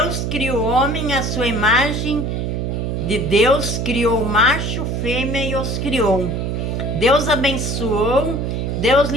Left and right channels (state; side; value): noise; right; hum, 1 dB below the sound